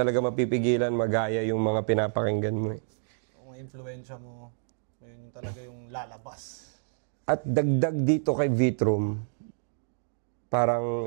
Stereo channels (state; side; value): silent; left; digital silence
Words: mapipigilan magaya yung mga pinapakinggan mo Ang influensya mo, yun yung talaga yung lalabas. At dagdag dito kay Vitrum,